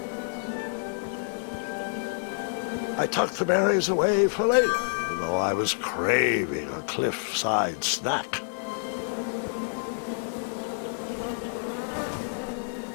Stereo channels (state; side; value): silent; right; digital silence